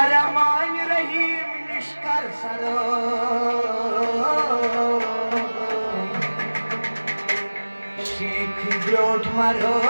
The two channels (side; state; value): both; inverted; correlation -1.00